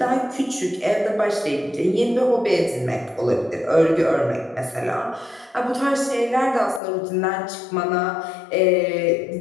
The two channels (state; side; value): drops out; right; at 6.8 s